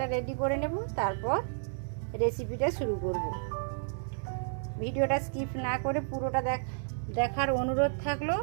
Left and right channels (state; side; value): silent; left; digital silence